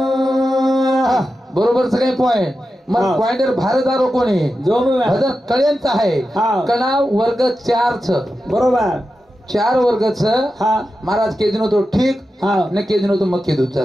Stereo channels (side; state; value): both; normal; correlation 0.91